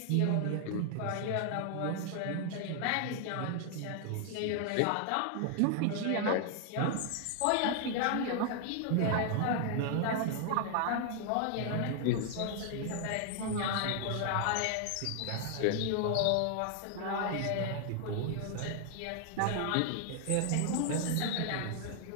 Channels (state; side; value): different; both; correlation 0.00